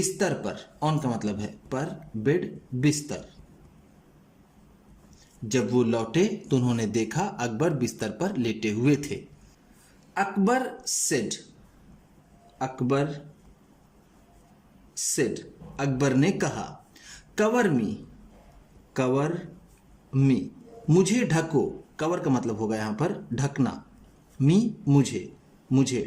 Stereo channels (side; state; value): both; identical; correlation 1.00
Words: पर। ऑन का मतलब है पर, बेड बिस्तर। जब वो लौटे तो उन्होंने देखा अकबर बिस्तर पर लेटे हुए थे। अकबर सेड, अकबर सेड, अकबर ने कहा। कवर मी, कवर मी, मुझे ढको। कवर का मतलब होगा यहां पर ढकना। मी मुझे, मुझे